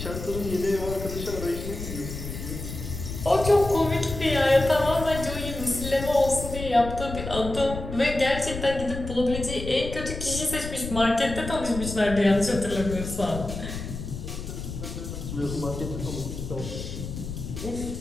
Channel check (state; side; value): noise; left; rumble, 7 dB below the sound